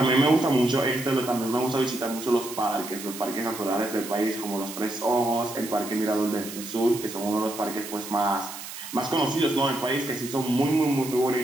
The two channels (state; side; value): noise; right; hiss, 11 dB below the sound